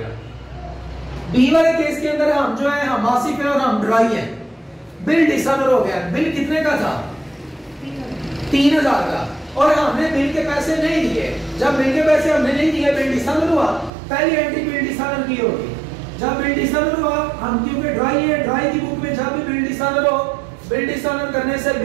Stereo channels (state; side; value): drops out; left; at 13.9 s